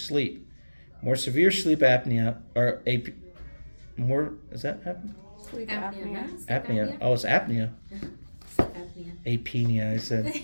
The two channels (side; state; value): both; inverted; correlation -1.00